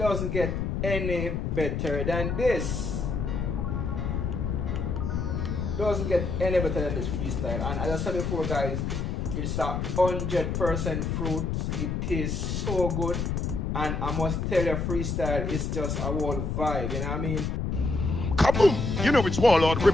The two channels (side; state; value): left; noise; rumble, 1 dB below the sound